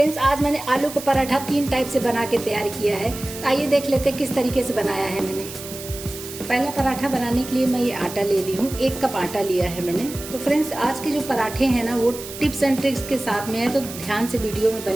आज मैंने आलू का पराठा 3 टाइप से बना के तैयार किया है। तो आइए देख लेते हैं किस तरीके से बनाया है मैंने। पहला पराठा बनाने के लिए मैं ये आटा ले ली हूँ। 1 कप आटा लिया है मैंने। तो फ्रेंड्स, आज के जो पराठे हैं ना, वो टिप्स एंड ट्रिक्स के साथ में है, तो ध्यान से वीडियो में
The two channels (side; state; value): right; noise; hiss, 12 dB below the sound